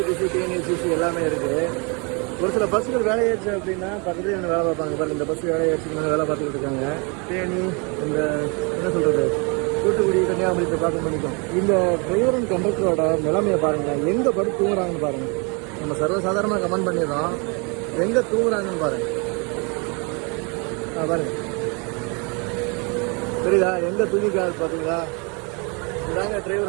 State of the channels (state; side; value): quieter; left; 32.1 dB